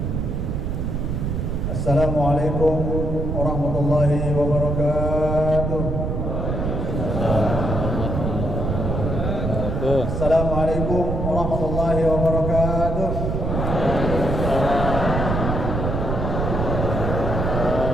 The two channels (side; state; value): right; noise; rumble, 1 dB below the sound